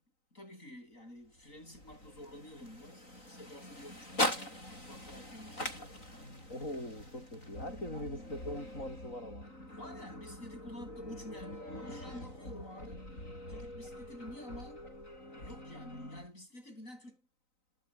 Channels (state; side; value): late; right; 3.9 ms